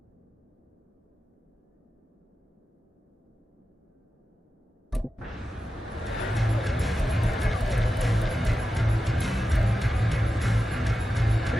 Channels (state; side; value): normal; both; correlation 0.92